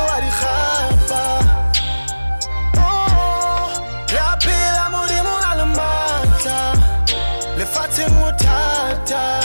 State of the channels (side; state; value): both; inverted; correlation -1.00